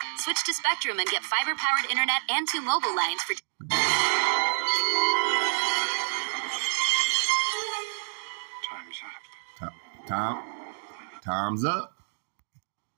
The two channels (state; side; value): silent; left; digital silence